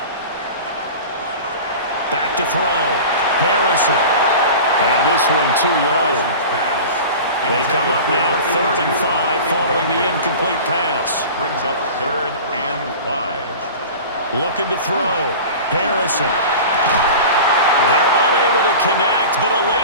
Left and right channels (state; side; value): inverted; both; correlation -0.35